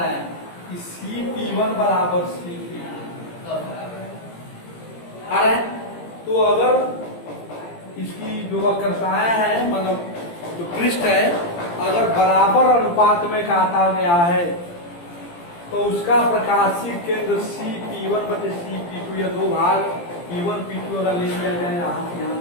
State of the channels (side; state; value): right; late; 17 ms